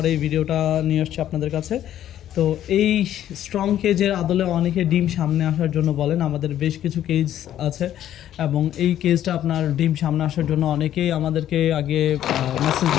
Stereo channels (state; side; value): quieter; right; 11.6 dB